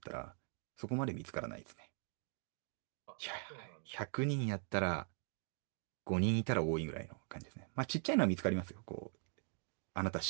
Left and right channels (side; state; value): left; silent; 50 dB below the other